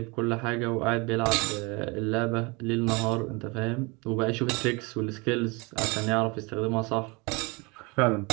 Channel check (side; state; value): left; quieter; 27.6 dB